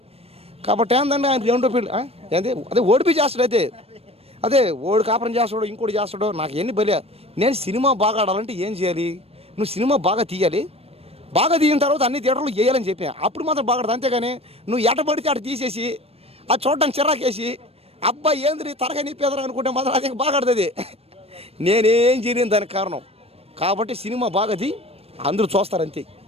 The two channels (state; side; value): late; left; 0.29 ms